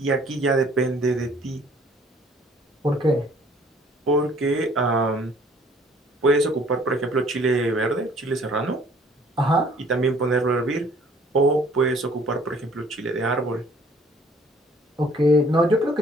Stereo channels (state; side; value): normal; both; correlation 0.57